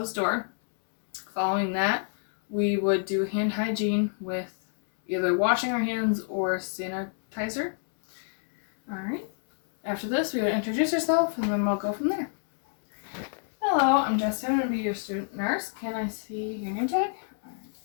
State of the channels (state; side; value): silent; right; digital silence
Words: door. Following that, we would do hand hygiene with either washing our hands or sanitizer. Alright, after this, we would introduce ourselves and then we'll go from there. Hello, I'm Jessica. I'm going to be your student nurse. Can I see your name tag?